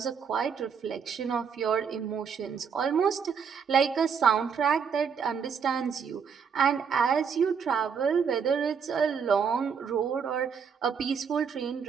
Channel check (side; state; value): left; quieter; 6.6 dB